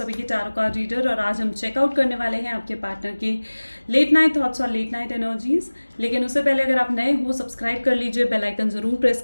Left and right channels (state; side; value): inverted; both; correlation -1.00